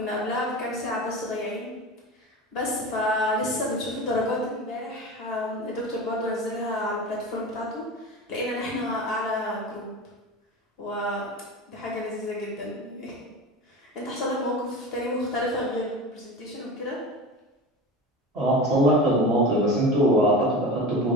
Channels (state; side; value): normal; both; correlation 0.30